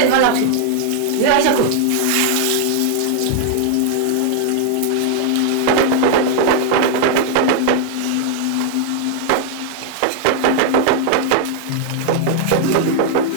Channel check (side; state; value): both; different; correlation 0.00